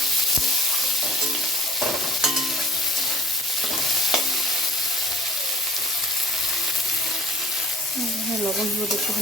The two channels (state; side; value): normal; both; correlation 0.48